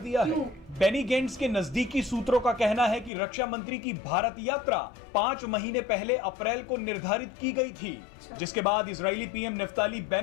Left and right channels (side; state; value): right; drops out; at 3.1 s